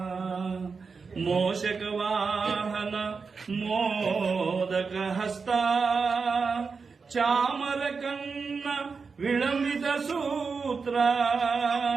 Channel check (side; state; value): left; quieter; 5.0 dB